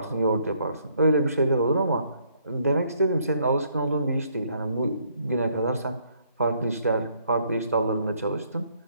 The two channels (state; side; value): inverted; both; correlation -0.68